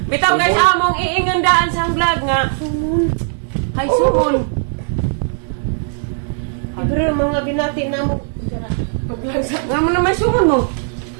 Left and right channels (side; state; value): left; silent; 67 dB below the other